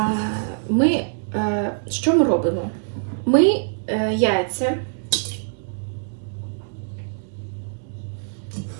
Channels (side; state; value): left; silent; 63 dB below the other